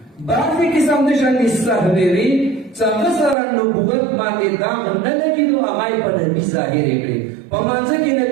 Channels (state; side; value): drops out; left; at 3.4 s